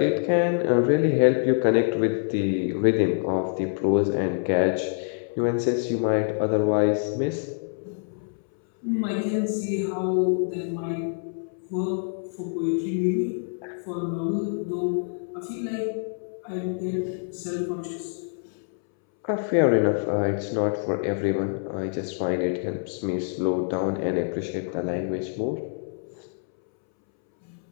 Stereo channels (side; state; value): right; silent; 61 dB below the other